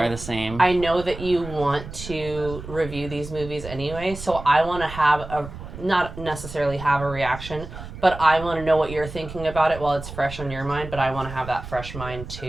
the same. I know that you want to review these movies anyway, so I want to not necessarily have a reaction, but I want to know what you're thinking about it while it's fresh on your mind, but I want to have that fresh mind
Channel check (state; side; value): noise; right; rumble, 12 dB below the sound